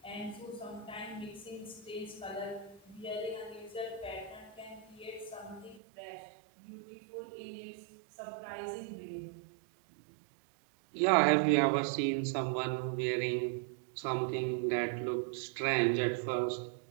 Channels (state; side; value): drops out; left; at 5.8 s